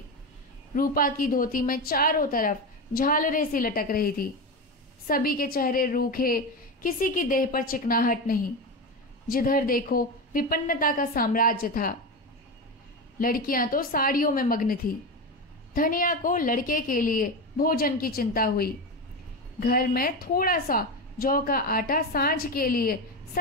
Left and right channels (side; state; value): both; normal; correlation 0.19